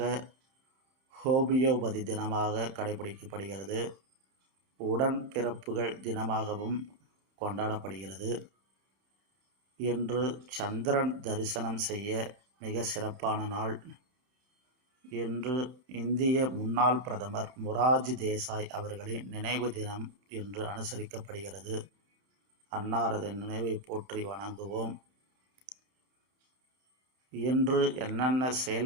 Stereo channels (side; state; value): left; late; 31 ms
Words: ஹோமியோபதி தினமாக கடைபிடிக்கப்படுகிறது. உடன்பிறப்புகள் தினமாகவும் கொண்டாடப்படுகிறது. இன்று சந்திரன் தரிசனம் செய்ய மிக சிறப்பான நாள். இன்று இந்திய முன்னாள் பிரதமர் மொரார்ஜி தேசாய் அவர்களின் நினைவு தினம் இன்று அனுசரிக்கப்படுகிறது. அன்னாரது நினைவை போற்றி வணங்குவோம். இன்று என்னென்ன